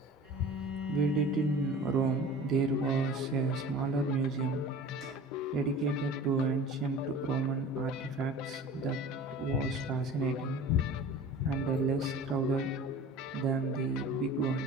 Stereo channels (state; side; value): normal; both; correlation 0.40